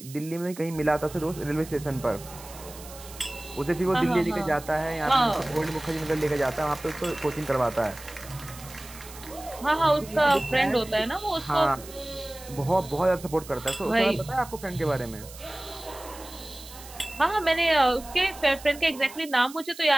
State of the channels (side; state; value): right; noise; hiss, 17 dB below the sound